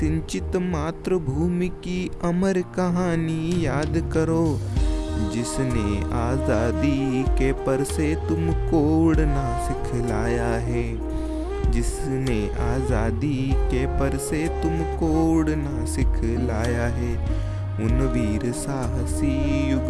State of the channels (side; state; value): both; identical; correlation 1.00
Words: मातृभूमि की अमर कहानी याद करो। जिसने आज़ादी के पर से तुमको उड़ना सिखलाया है। जिसने आज़ादी के पर से तुमको उड़ना सिखलाया है। उन वीर साहसी